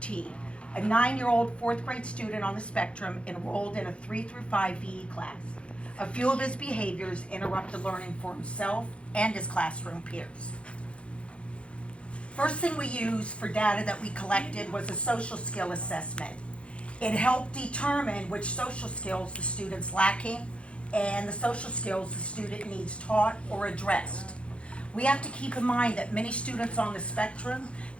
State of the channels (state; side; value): late; right; 0.060 ms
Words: a 9-year-old 4th grade student on the spectrum enrolled in a 3 through 5 VE class. A few of his behaviors interrupted learning for himself and his classroom peers. First thing we used for data that we collected was a social skill assessment. It helped determine which social skills the student's lacking and the social skills the student needs taught or addressed. We have to keep in mind that many students on the spectrum,